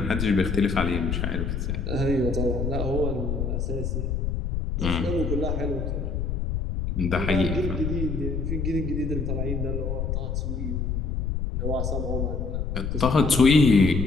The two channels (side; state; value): left; noise; rumble, 1 dB below the sound